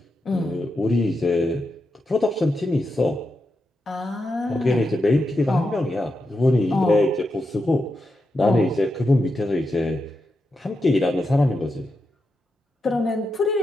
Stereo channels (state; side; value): normal; both; correlation 0.87